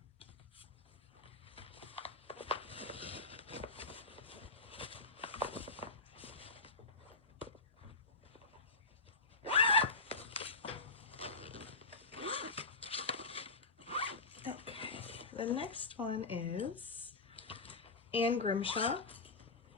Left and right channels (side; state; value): right; quieter; 3.7 dB